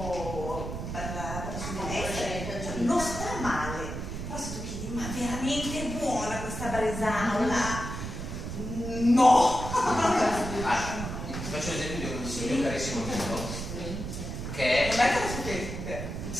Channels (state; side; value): noise; right; rumble, 6 dB below the sound